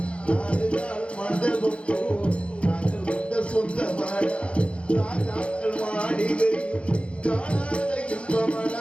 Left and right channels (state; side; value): late; right; 0.060 ms